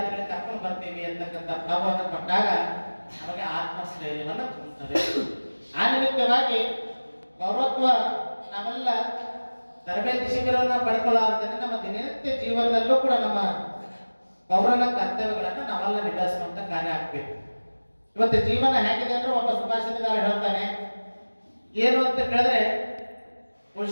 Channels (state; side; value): inverted; both; correlation -1.00